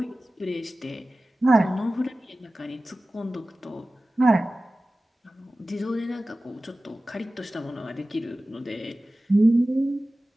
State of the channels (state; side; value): normal; both; correlation 0.96